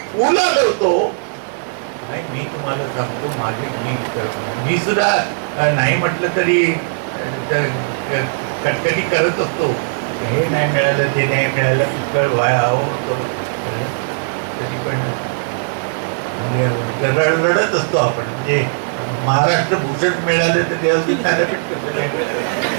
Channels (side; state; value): left; silent; digital silence